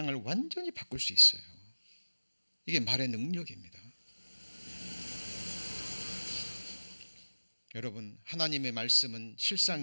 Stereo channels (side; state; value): both; inverted; correlation -1.00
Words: 완전히 바꿀 수 있어요. 이게 말의 능력입니다. 여러분, 하나님의 말씀은